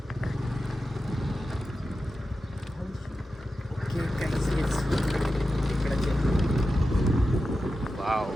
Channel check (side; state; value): both; normal; correlation 0.91